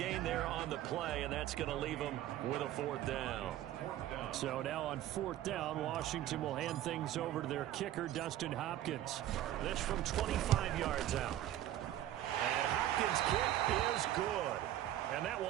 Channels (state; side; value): quieter; left; 13.0 dB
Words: there on the play, and that's going to leave him with a 4th down. So now on 4th down, Washington will hand things over to their kicker, Dustin Hopkins. This from 25 yards out. And Hopkins' kick is good. And that